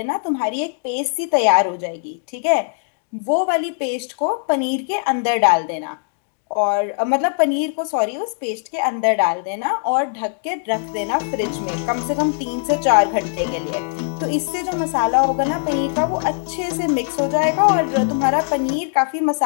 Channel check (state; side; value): silent; right; digital silence